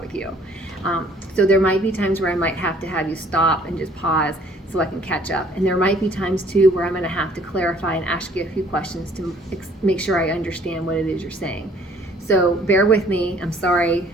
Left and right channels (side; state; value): both; normal; correlation 0.58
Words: with you. So there might be times where I might have to have you stop and just pause so I can catch up. And there might be times too where I'm going to have to clarify and ask you a few questions to make sure I understand what it is you're saying. So bear with me. I'm sorry